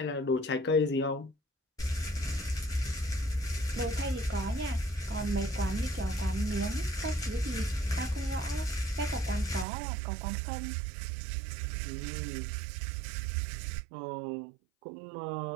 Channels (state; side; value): drops out; left; at 9.7 s